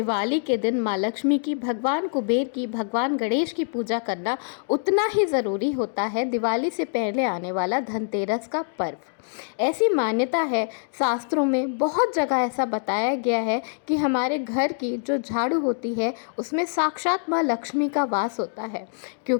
के दिन माँ लक्ष्मी की, भगवान कुबेर की, भगवान गणेश की पूजा करना, उतना ही ज़रूरी होता है दिवाली से पहले आने वाला धनतेरस का पर्व। ऐसी मान्यता है, शास्त्रों में बहुत जगह ऐसा बताया गया है कि हमारे घर की जो झाड़ू होती है उसमें साक्षात माँ लक्ष्मी का वास होता है,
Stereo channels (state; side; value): silent; right; digital silence